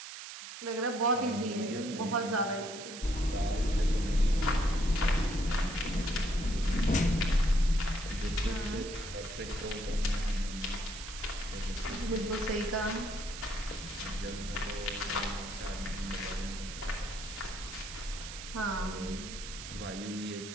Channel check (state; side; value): noise; right; hiss, 10 dB below the sound